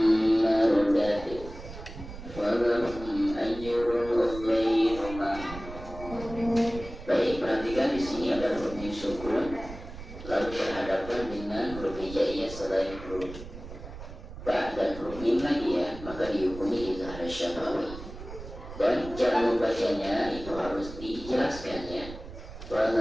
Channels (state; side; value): noise; right; rumble, 13 dB below the sound